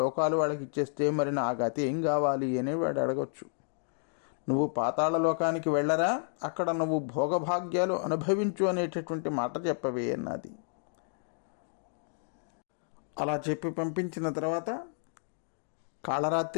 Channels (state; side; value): silent; right; digital silence